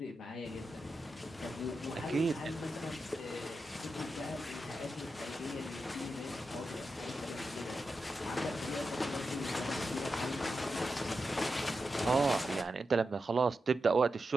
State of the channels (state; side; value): normal; both; correlation 0.89